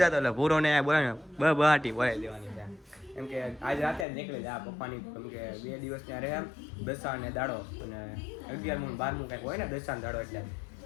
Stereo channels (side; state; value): right; drops out; at 4.0 s